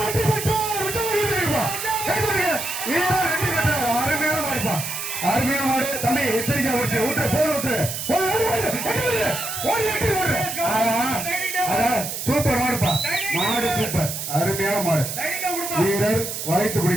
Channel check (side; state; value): right; noise; hiss, 5 dB below the sound